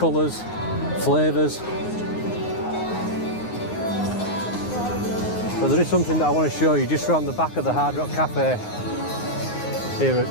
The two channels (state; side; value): late; right; 9.6 ms